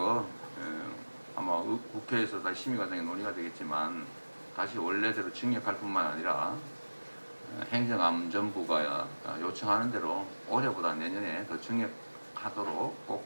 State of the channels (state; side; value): inverted; both; correlation -1.00